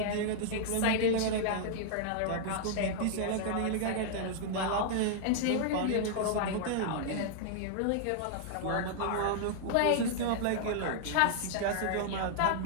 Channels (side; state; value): both; different; correlation -0.01